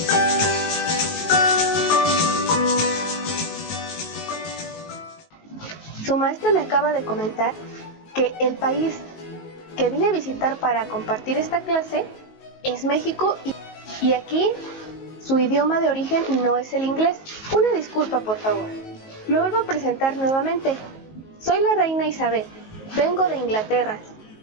Su maestra me acaba de comentar que el país que vine a visitar para compartir esta clase es México y aquí su idioma de origen no es el inglés. Una disculpa, por favor. Me vuelvo a presentar nuevamente. Soy la reina Isabel, vengo de Inglaterra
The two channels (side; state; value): right; late; 19 ms